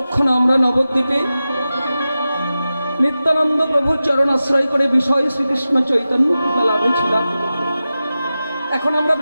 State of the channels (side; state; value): both; inverted; correlation -0.94